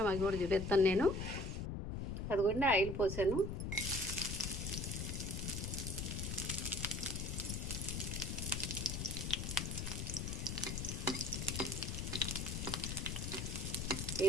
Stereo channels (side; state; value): left; noise; rumble, 3 dB below the sound